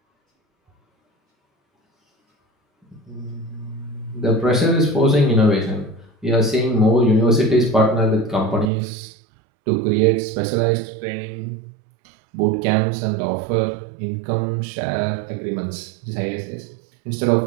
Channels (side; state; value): left; drops out; at 8.7 s